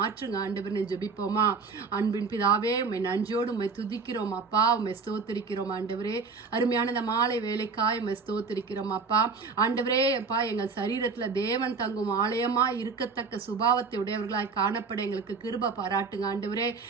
ஆண்டவரே. ஜெபிப்போமா? அன்பின் பிதாவே, உம்மை நன்றியோடு உம்மை துதிக்கிறோம் அப்பா. உம்மை ஸ்தோத்திரிக்கிறோம் ஆண்டவரே. அருமையான இந்த மாலை வேலைக்காய் உம்மை ஸ்தோத்திரிக்கிறோம் அப்பா. ஆண்டவரே அப்பா, எங்கள் சரீரத்துல தேவன் தங்கும் ஆலயமா இருக்கத்தக்க சுபாவத்தை உடையவர்களாய் காணப்பட எங்களுக்கு கிருபை பாராட்டுங்க ஆண்டவரே.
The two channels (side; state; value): left; quieter; 4.7 dB